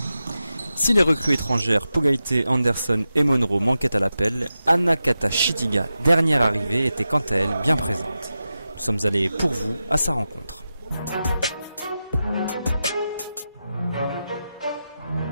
Si les recrues étrangères Pogaité, Anderson et Monroe manquaient à l'appel, Anna Kata-Chitiga, dernière arrivée, était quant à elle bien présente. Nous sommes allés pour vous à sa rencontre.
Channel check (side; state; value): both; inverted; correlation -0.91